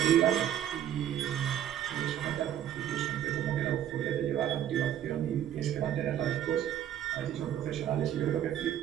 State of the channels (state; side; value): quieter; left; 10.8 dB